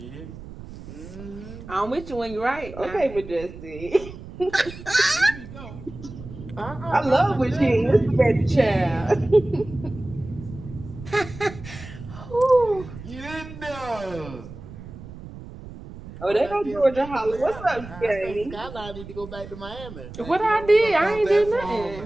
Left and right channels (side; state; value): right; noise; rumble, 14 dB below the sound